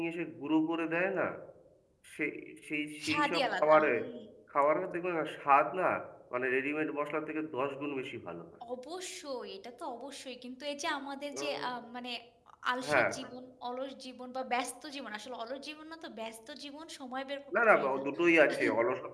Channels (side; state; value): both; identical; correlation 1.00